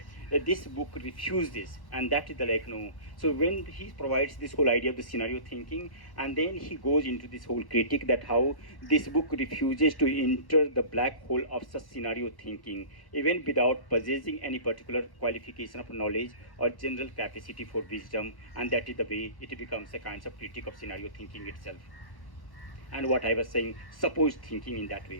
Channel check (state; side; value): late; right; 1.1 ms